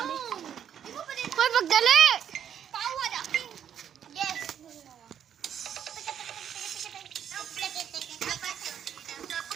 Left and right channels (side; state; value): left; quieter; 9.1 dB